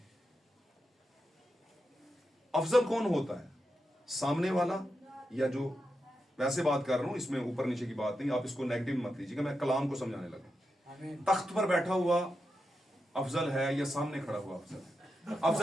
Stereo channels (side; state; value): both; normal; correlation 0.88